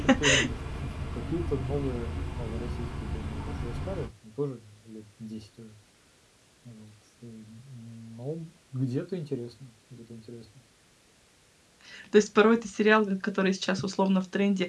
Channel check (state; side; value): identical; both; correlation 1.00